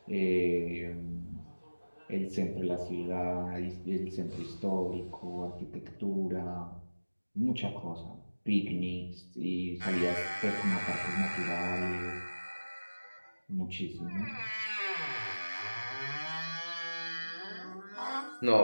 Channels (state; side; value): inverted; both; correlation -1.00